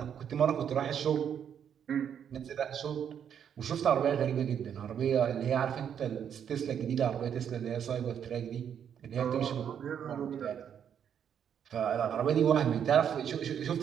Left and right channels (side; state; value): left; quieter; 8.5 dB